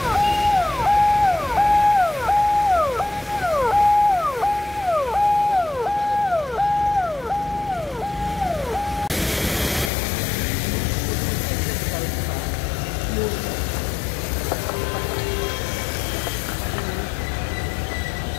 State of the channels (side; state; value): right; drops out; at 9.9 s